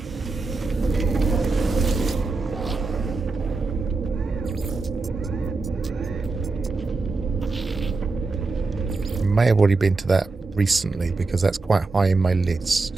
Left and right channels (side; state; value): left; quieter; 3.8 dB